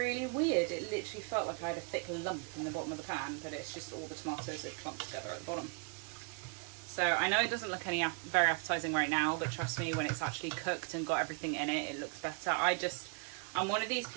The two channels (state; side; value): quieter; left; 34.6 dB